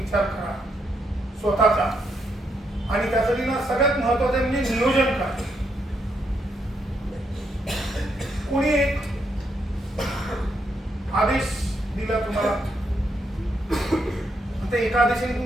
करा स्वतःचा. आणि त्यासाठी ना सगळ्यात महत्वाचं म्हणजे नियोजन करा. कोणी एक आदेश दिला तुम्हाला, त्या एका आदेशाने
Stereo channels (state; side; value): normal; both; correlation 0.78